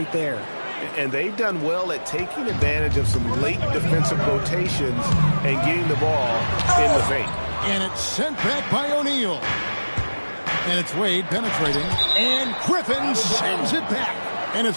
there. And they've done well at taking advantage of some late defensive rotations and getting the ball in the paint. And it's sent back by O'Neal. And it's Wade penetrating. And Griffin sends it back. And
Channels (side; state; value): both; inverted; correlation -1.00